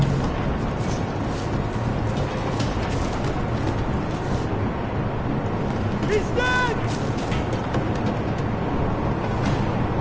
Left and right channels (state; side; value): identical; both; correlation 1.00